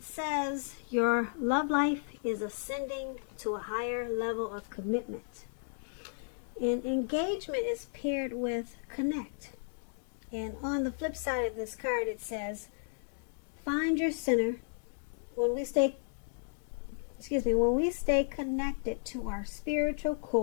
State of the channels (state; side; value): silent; right; digital silence